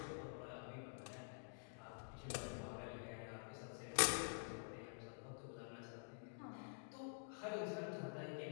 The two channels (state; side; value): silent; right; digital silence